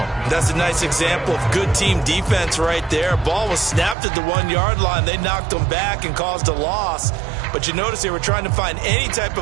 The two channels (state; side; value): drops out; left; at 4.0 s